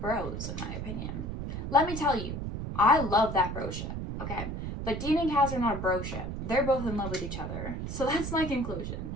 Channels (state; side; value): noise; right; rumble, 5 dB below the sound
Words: in my opinion. Let me tell you, I love that bro ship, okay? But Dean and Cass are not a bro ship. They're both in love with each other. So that's my conclusion.